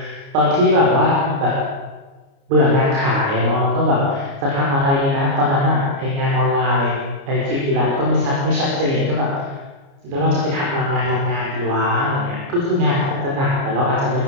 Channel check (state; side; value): late; left; 29 ms